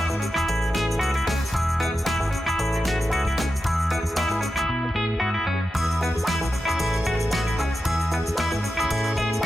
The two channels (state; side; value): normal; both; correlation 0.90